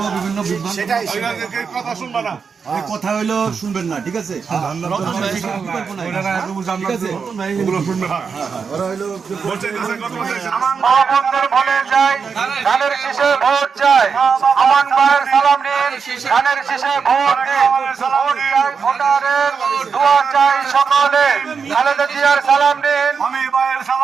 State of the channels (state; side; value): quieter; left; 5.8 dB